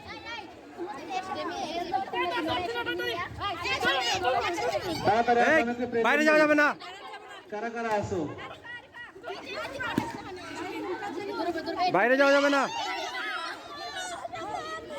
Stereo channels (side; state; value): both; identical; correlation 1.00